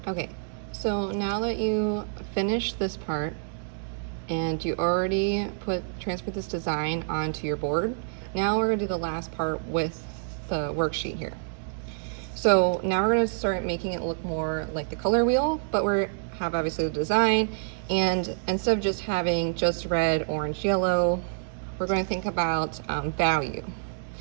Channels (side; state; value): left; silent; digital silence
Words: Okay, so now that you finished this part and you already transferred this design onto your board, now we're gonna do the last part with the worksheet here. So now we're gonna start making it look more like the color wheel, but we have obviously the design, and instead of just having just red, orange, yellow, we're gonna think about value.